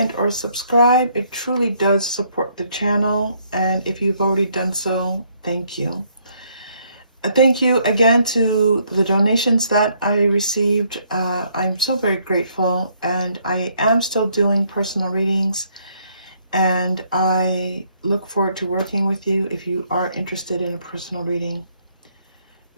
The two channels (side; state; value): both; inverted; correlation -0.69